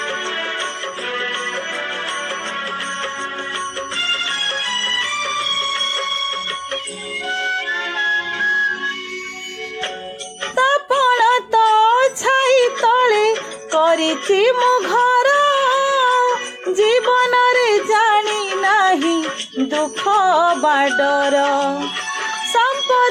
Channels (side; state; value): both; identical; correlation 1.00